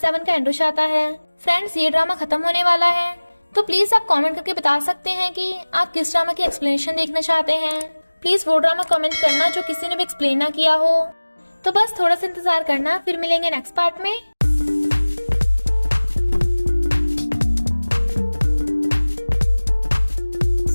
का एंड हो जाता है। फ्रेंड्स, ये ड्रामा खत्म होने वाला है, तो प्लीज आप कमेंट करके बता सकते हैं कि आप किस ड्रामा की एक्सप्लेनेशन देखना चाहते हैं। प्लीज वो ड्रामा कमेंट करना जो किसी ने भी एक्सप्लेन ना किया हो। तो बस थोड़ा सा इंतजार करना, फिर मिलेंगे नेक्स्ट पार्ट में।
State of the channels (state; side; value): inverted; both; correlation -1.00